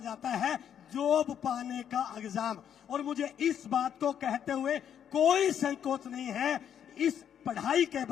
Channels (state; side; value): quieter; right; 9.0 dB